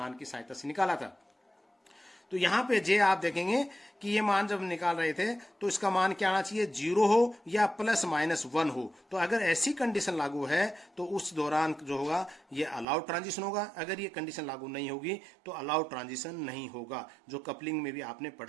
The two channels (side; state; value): left; drops out; at 12.9 s